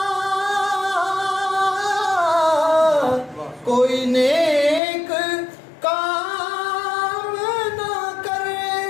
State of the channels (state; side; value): drops out; right; at 4.8 s